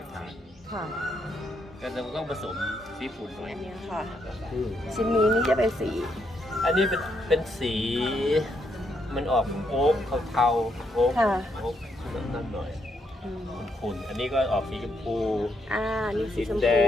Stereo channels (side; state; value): both; normal; correlation 0.77